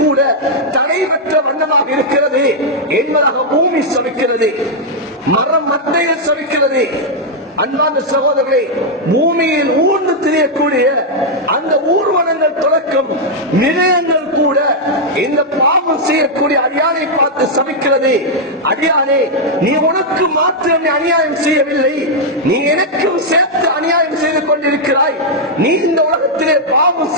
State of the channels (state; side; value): normal; both; correlation -0.03